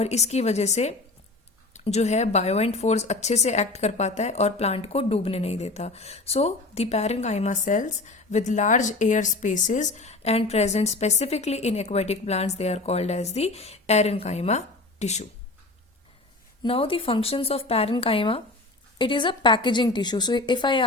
इसकी वजह से जो है बायोएंट फोर्स अच्छे से एक्ट कर पाता है और प्लांट को डूबने नहीं देता। So the parenchyma cells with large air spaces and present specifically in aquatic plants, they are called as the parenchyma tissue. Now the functions of parenchyma, it is a packaging tissue. So if I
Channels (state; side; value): quieter; right; 3.2 dB